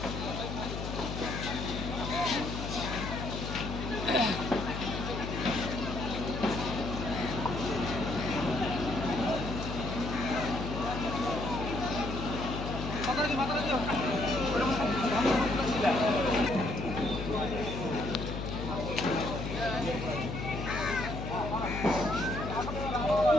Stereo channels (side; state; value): left; noise; hum, 5 dB below the sound